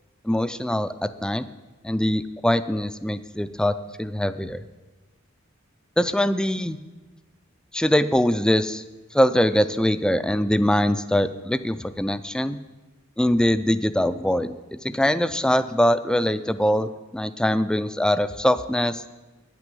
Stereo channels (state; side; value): normal; both; correlation 0.92